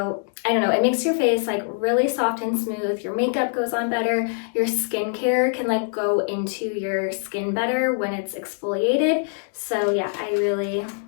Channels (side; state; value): right; silent; 63 dB below the other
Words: I don't know, it makes your face like really soft and smooth. Your makeup goes on better. Your skincare can like go into your skin better when it's exfoliated. So yeah, I really